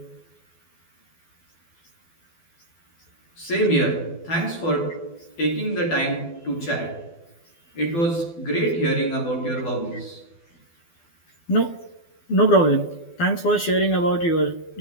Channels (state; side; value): late; right; 12 ms